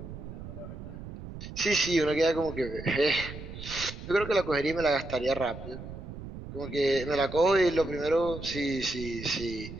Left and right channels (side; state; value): right; noise; rumble, 11 dB below the sound